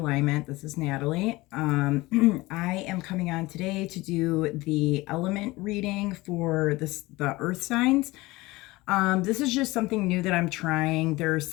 This is Natalie. I am coming on today to do the element reading for the earth signs. This is just something new that I'm trying. There's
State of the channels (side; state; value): right; quieter; 20.7 dB